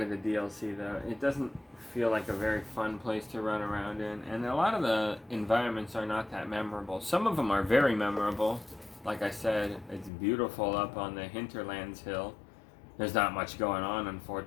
of the DLC though. It doesn't feel like a very fun place to run around in, and a lot of the environments are not that memorable. Some of them are very memorable. Like I said, it's beautiful up on the Hinterlands Hill. There's not much going on,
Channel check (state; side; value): drops out; right; at 10.1 s